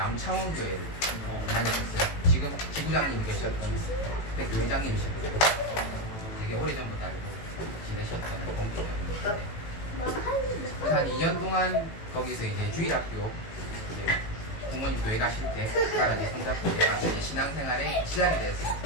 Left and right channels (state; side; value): late; right; 18 ms